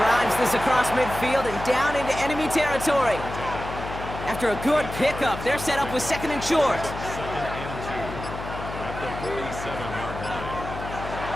this across midfield and down into enemy territory. After a good pickup, they're set up with 2nd and short. 2nd and 2 at the 47-yard line.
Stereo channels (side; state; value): left; noise; hum, 9 dB below the sound